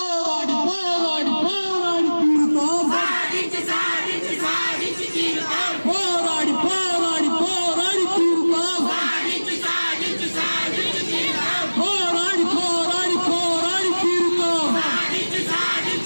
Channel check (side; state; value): both; inverted; correlation -1.00